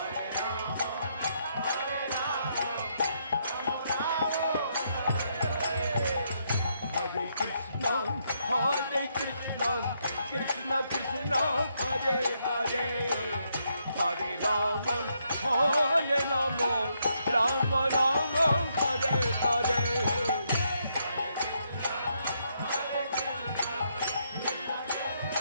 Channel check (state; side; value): inverted; both; correlation -0.76